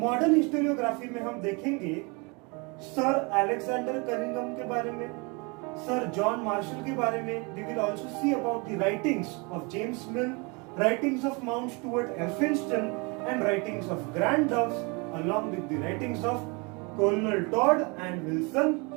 हिस्टोरियोग्राफी में हम देखेंगे सर अलेक्जेंडर कनिंघम के बारे में, सर जॉन मार्शल के बारे में. We will also see about the writings of James Mill, writings of Mount Stuart Elphinstone and writings of Grand Doves along with the writings of Colonel Todd and Wilson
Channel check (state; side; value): quieter; left; 29.9 dB